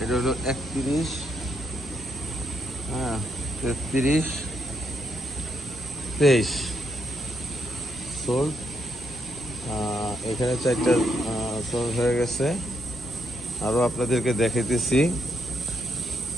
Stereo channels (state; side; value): normal; both; correlation 0.78